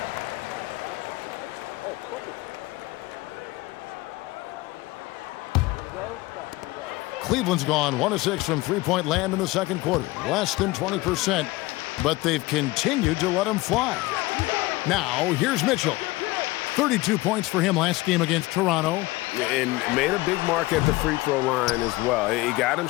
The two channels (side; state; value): right; quieter; 20.5 dB